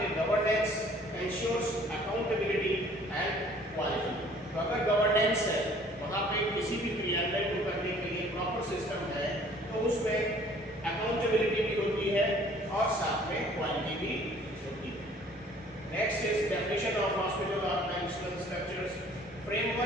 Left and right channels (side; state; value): both; normal; correlation 0.55